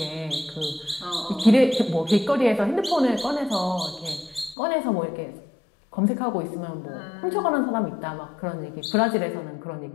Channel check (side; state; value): right; drops out; at 4.5 s